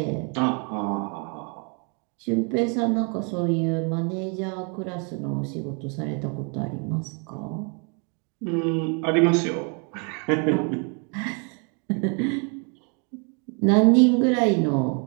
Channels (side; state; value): left; quieter; 36.7 dB